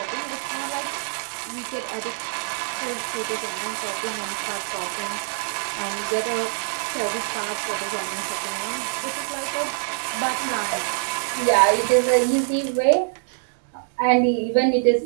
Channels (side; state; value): left; silent; 62 dB below the other